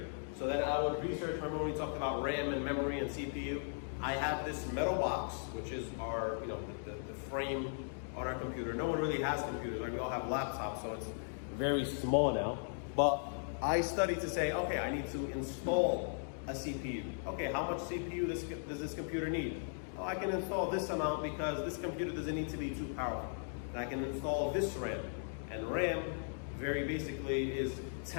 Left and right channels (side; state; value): right; silent; digital silence